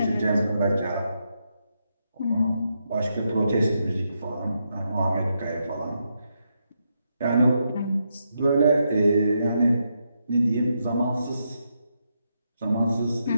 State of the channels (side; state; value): both; inverted; correlation -0.82